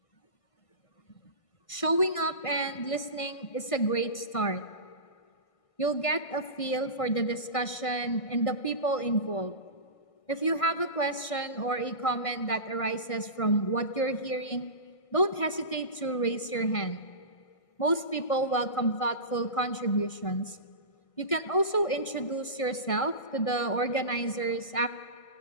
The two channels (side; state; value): right; late; 1.6 ms